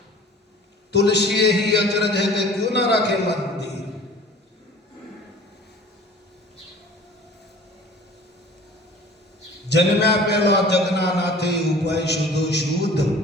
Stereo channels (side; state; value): both; normal; correlation 0.46